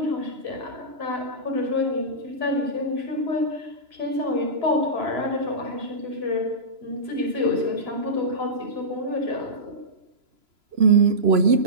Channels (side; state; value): left; late; 3.0 ms